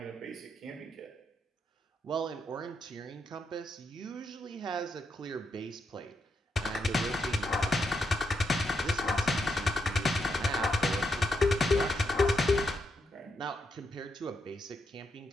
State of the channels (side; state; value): both; normal; correlation 0.81